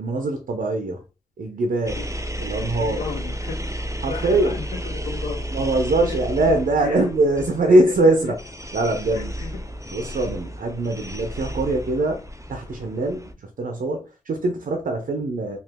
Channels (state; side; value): normal; both; correlation 0.63